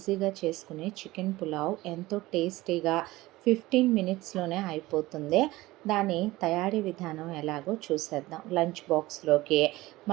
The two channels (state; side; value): quieter; left; 18.8 dB